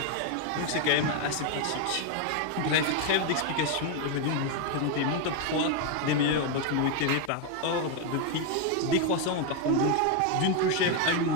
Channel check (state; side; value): different; both; correlation 0.01